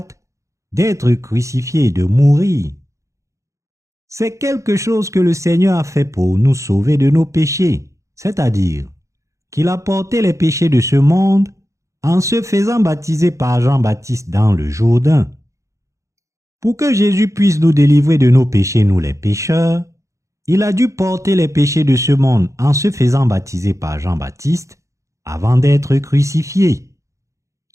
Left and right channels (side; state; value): left; late; 0.15 ms